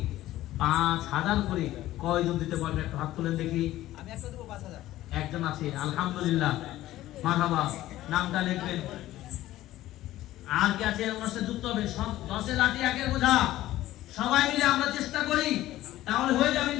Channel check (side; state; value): right; quieter; 15.1 dB